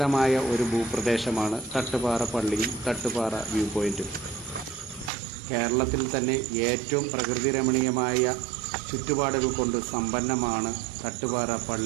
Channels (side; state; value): left; drops out; at 5.1 s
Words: ഒരു ഭൂപ്രദേശമാണ് തട്ടുപാറ പള്ളിയും തട്ടുപാറ വ്യൂ പോയിന്റും. കേരളത്തിൽ തന്നെ ഏറ്റവും പ്രകൃതി രമണീയമായ ചുറ്റുപാടുകൾ കൊണ്ട് സമ്പന്നമാണ് തട്ടുപാറ